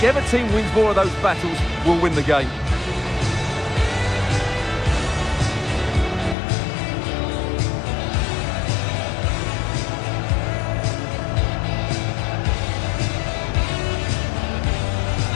team wins more of those battles will win the game.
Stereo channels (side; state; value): right; drops out; at 6.4 s